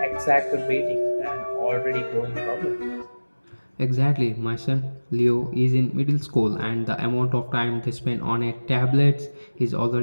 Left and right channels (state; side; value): inverted; both; correlation -1.00